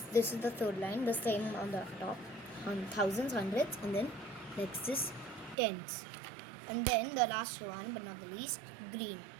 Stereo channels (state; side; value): drops out; left; at 5.6 s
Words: This is the third line, the same on the top. Thousands, hundreds, and then next is tens. And then the last one, but not the least, green.